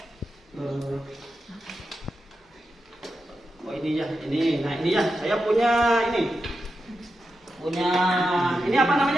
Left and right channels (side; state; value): both; normal; correlation 0.89